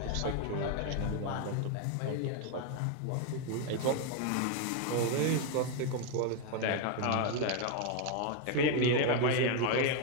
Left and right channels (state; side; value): different; both; correlation 0.01